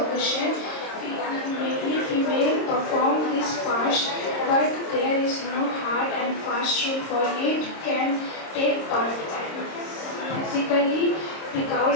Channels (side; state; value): right; late; 26 ms